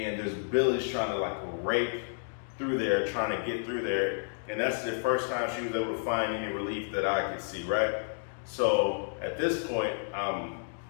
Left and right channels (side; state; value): right; silent; digital silence